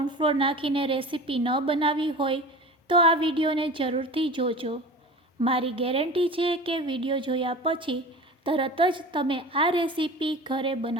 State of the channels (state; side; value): normal; both; correlation 0.36